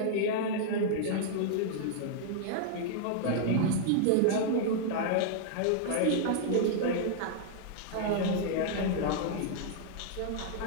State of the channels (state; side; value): different; both; correlation -0.01